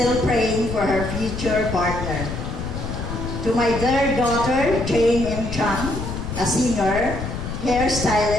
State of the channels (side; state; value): left; noise; rumble, 6 dB below the sound